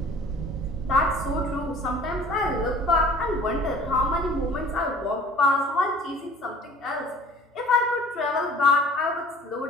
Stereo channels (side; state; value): both; normal; correlation 0.48